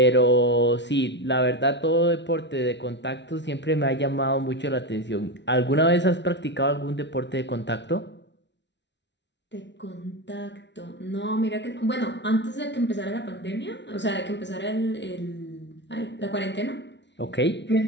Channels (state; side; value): late; right; 0.51 ms